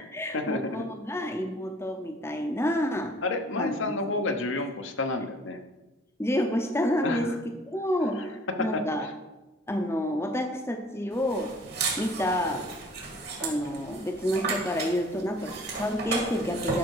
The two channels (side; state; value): both; normal; correlation 0.52